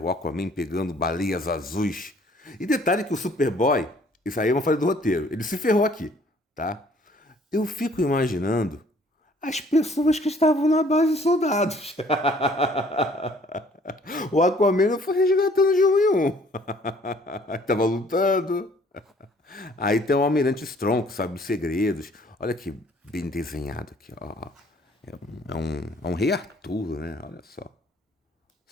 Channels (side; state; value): both; normal; correlation 0.58